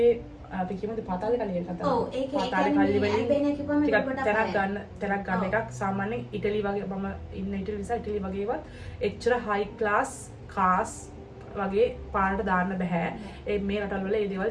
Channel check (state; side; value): identical; both; correlation 1.00